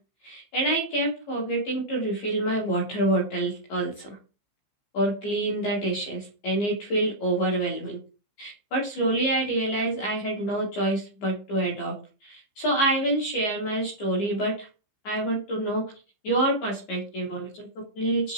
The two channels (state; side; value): late; right; 15 ms